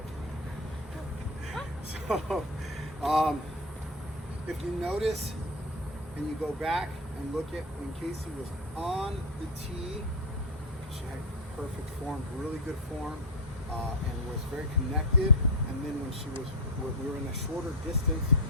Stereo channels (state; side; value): normal; both; correlation 0.12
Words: So, if you notice and you go back and look at when Casey was on the tee, she had perfect form, really good form. and was very connected. And then when we were in a shorter distance,